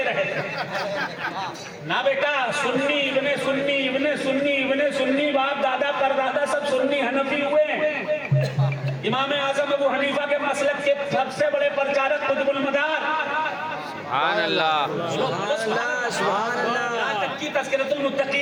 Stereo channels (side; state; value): both; identical; correlation 1.00